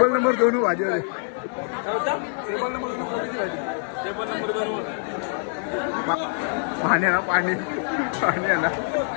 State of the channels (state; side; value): silent; right; 62 dB below the other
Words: नंबर 2 भाजी पाणी आहे ना पाणी आहे ना